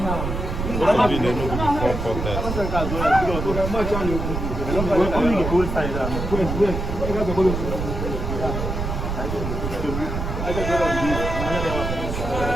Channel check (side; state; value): right; noise; rumble, 4 dB below the sound